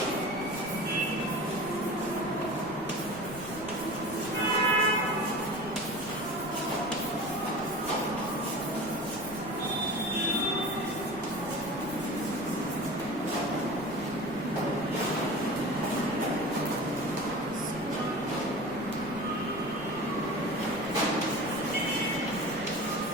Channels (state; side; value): noise; right; rumble, 17 dB below the sound